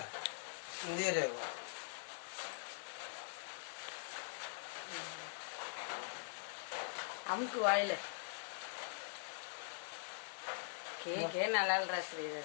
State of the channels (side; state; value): right; silent; digital silence